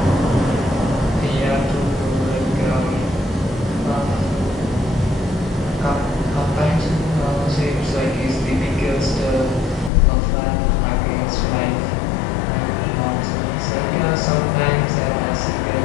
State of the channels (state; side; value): drops out; right; at 9.9 s